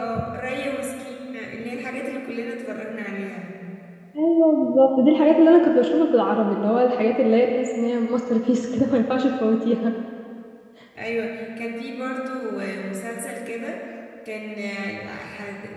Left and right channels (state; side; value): identical; both; correlation 1.00